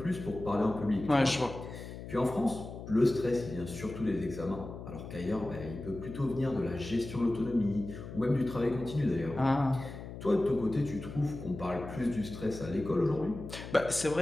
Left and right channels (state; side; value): noise; left; hum, 11 dB below the sound